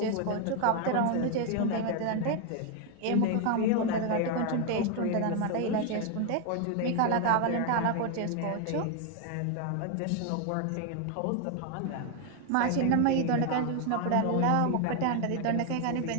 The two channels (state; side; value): different; both; correlation 0.01